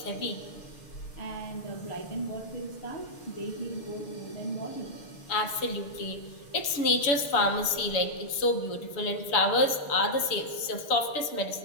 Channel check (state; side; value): late; right; 7.0 ms